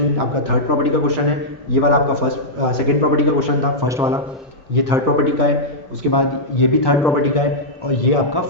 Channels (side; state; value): both; normal; correlation -0.10